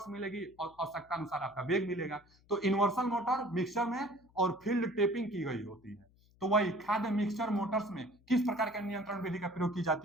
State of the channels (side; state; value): left; noise; hum, 30 dB below the sound